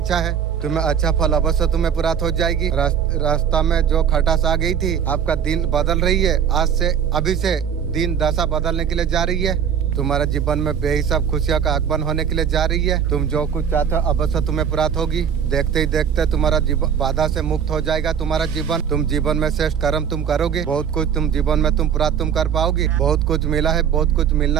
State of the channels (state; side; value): quieter; left; 8.1 dB